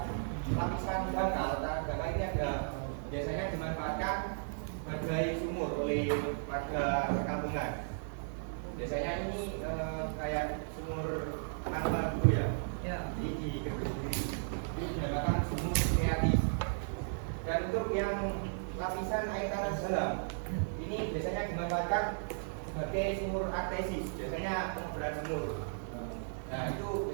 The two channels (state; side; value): silent; left; digital silence